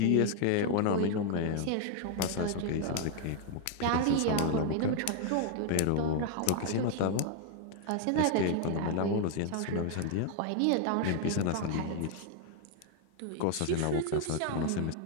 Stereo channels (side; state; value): both; different; correlation 0.00